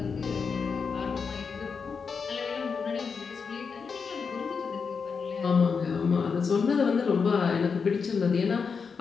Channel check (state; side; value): quieter; right; 5.6 dB